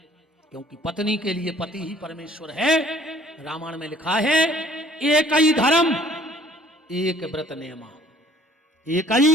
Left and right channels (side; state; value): both; normal; correlation 0.56